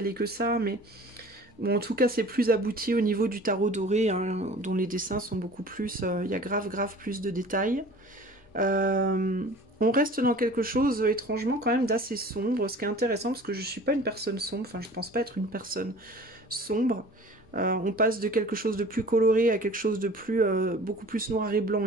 que ça, mais bon, en tout cas, c'est plus abouti au niveau du tarot doré, hein, dont les dessins sont beaucoup plus, il y a grave plus de détails. On reste dans quelque chose étrangement quand même d'assez sombre, ce qui est intéressant parce que je suis pas une personne sombre, enfin je pense pas être une personne sombre. On passe de quelque chose de plus coloré à quelque chose de beaucoup plus noir et blanc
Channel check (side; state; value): both; normal; correlation 0.45